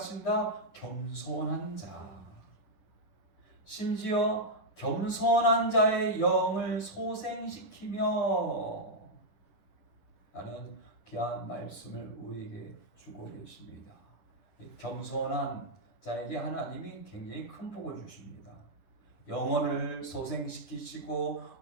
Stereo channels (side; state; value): right; late; 9.8 ms